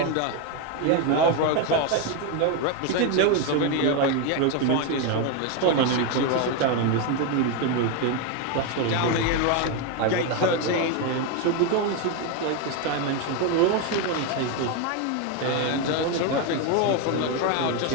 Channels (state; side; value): different; both; correlation 0.02